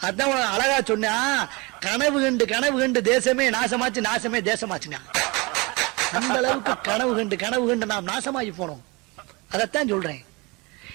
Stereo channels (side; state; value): left; quieter; 26.3 dB